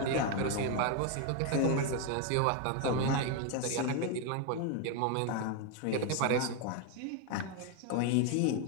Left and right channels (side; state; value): both; different; correlation 0.01